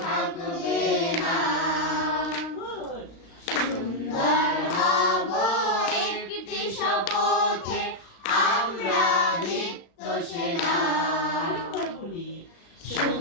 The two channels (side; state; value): right; late; 35 ms